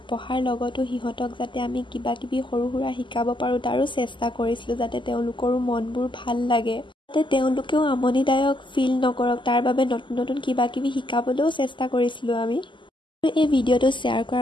পঢ়াৰ লগতো সিহঁতক যাতে আমি কিবা কিবি সৰু সুৰা শিকাব পাৰো তাৰো চেষ্টা কৰিছিলো, যাতে তেওঁলোকৰো মনবোৰ ভাল লাগে, যাতে তেওঁলোকেও আমনিদায়ক ফিল নকৰক। তাৰ বাবে নতুন নতুন কিবা কিবি শিকাবলৈও চেষ্টা কৰিছিলো আমি। এই ভিডিঅ'টো শ্বেয়াৰ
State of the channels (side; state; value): right; late; 0.24 ms